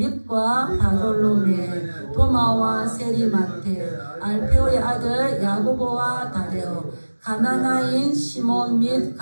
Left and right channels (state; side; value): inverted; both; correlation -1.00